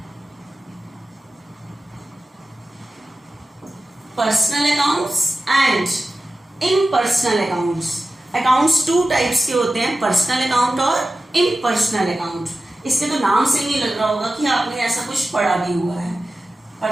Personal accounts and impersonal accounts. Accounts 2 types के होते हैं, पर्सनल अकाउंट और इम्पर्सनल अकाउंट। इसके तो नाम से ही नहीं लग रहा होगा कि आपने ऐसा कुछ पढ़ा भी हुआ है।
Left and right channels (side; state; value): both; normal; correlation 0.94